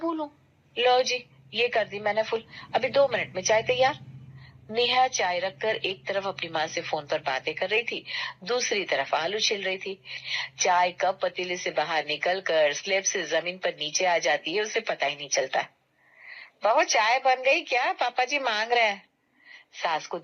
लो जी, ये कर दी मैंने फुल। अभी 2 मिनट में चाय तैयार। नेहा चाय रखकर एक तरफ अपनी माँ से फोन पर बातें कर रही थी, दूसरी तरफ आलू छिल रही थी। चाय कप पतीले से बाहर निकल कर स्लेब से जमीन पर नीचे आ जाती है, उसे पता ही नहीं चलता। बहू चाय बन गई क्या, पापा जी मांग रहे हैं। सास को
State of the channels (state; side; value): identical; both; correlation 1.00